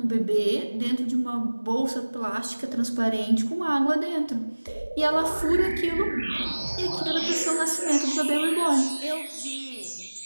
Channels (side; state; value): both; inverted; correlation -1.00